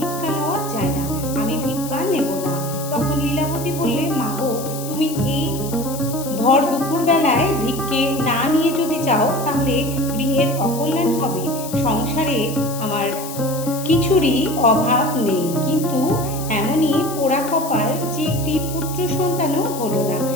লওয়া যায় না। আমি ভিক্ষা নেব না। তখন লীলাবতী বললেন, মা গো, তুমি এই ভর দুপুর বেলায় ভিক্ষে না নিয়ে যদি যাও তাহলে গৃহের অকল্যাণ হবে। সংসারে আমার কিছুরই অভাব নেই, কিন্তু এমনই পোড়া কপাল যে একটি পুত্র সন্তানও হলো না।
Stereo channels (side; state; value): left; noise; hiss, 11 dB below the sound